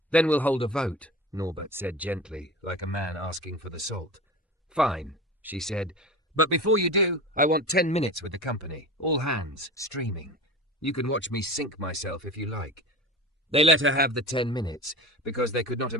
Then we'll hold a vote, Norbert said gently, like a man asking for the salt. Fine, she said. But before you do, I want 10 minutes with the company, all hands, streaming. You can watch me sink myself if you like. They let her have the 10 minutes, because they could not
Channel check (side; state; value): both; normal; correlation 0.31